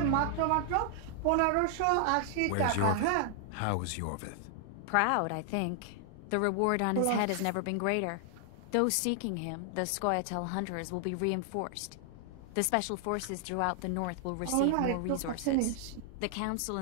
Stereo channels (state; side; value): different; both; correlation 0.00